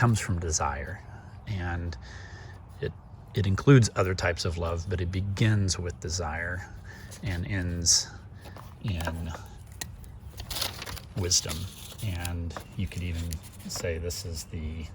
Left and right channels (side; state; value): both; identical; correlation 1.00